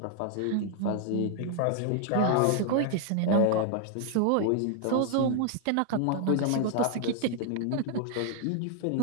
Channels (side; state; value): both; different; correlation 0.00